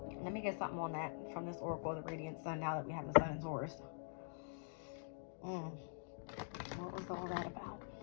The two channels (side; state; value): right; silent; digital silence